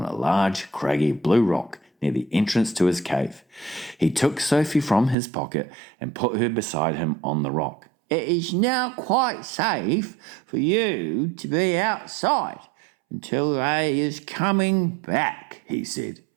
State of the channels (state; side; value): drops out; left; at 5.2 s